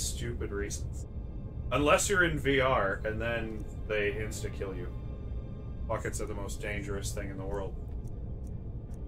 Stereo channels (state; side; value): identical; both; correlation 1.00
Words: reasons. Unless you're in VR, and then they insta-kill you. Buckets are the most dangerous thing in the world.